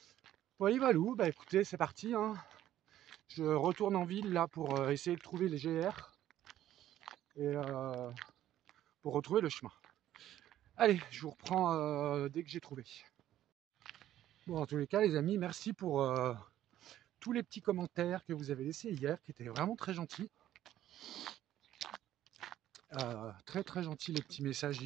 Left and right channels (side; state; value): left; quieter; 12.6 dB